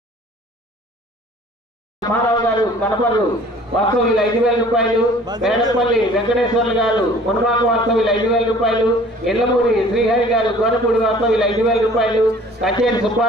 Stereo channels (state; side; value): normal; both; correlation 0.50